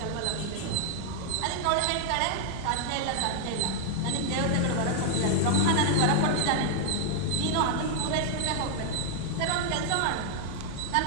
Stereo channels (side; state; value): both; different; correlation -0.01